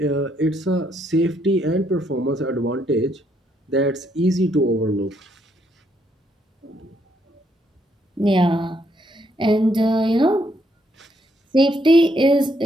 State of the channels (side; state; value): both; normal; correlation 0.73